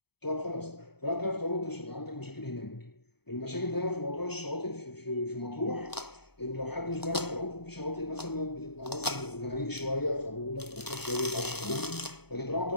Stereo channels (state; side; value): late; right; 0.97 ms